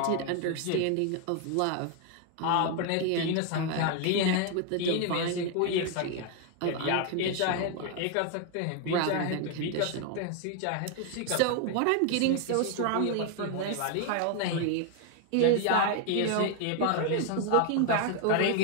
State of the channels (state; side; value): different; both; correlation 0.01